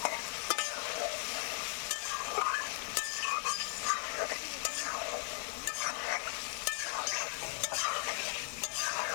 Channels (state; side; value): silent; right; 53 dB below the other